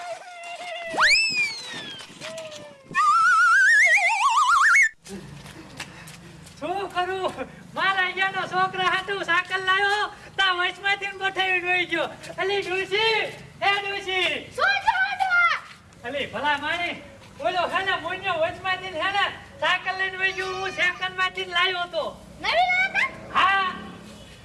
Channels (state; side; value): identical; both; correlation 1.00